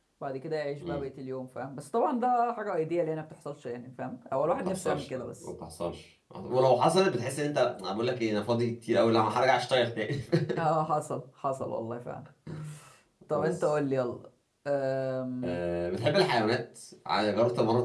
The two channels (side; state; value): both; identical; correlation 1.00